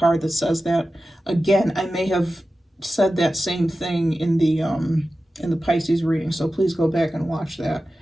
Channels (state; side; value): normal; both; correlation 0.94